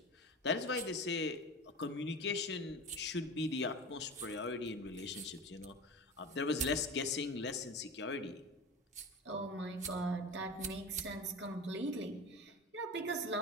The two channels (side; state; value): both; normal; correlation 0.31